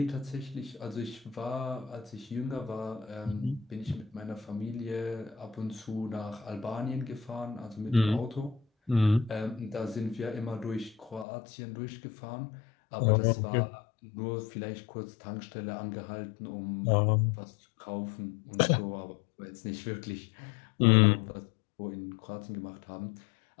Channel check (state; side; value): drops out; right; at 11.2 s